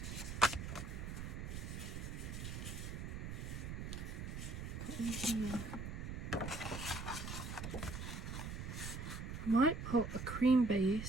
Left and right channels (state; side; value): noise; right; rumble, 5 dB below the sound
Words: Put in here. I might put a cream